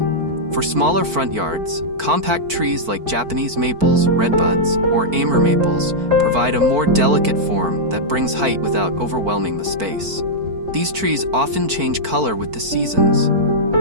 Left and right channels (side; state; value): left; late; 4.5 ms